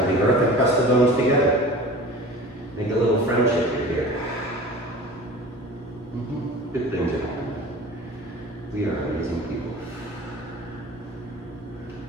the earth and press the bones together. Make a little friendship here. Good things are happening. We are amazing people.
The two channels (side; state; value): both; normal; correlation 0.39